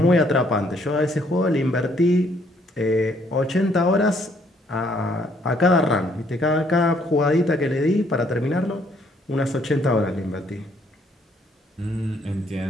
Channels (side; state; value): both; normal; correlation 0.67